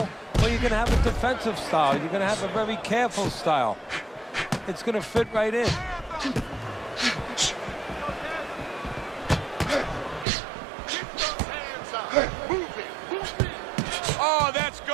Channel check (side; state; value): left; drops out; at 10.2 s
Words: well, you're going to have a defensive style. You're going to have a very careful style. It's going to fit right in. Oh, that's